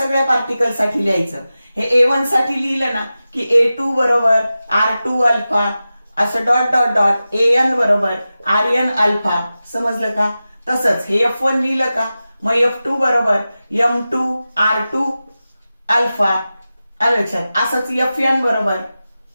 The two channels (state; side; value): inverted; both; correlation -0.94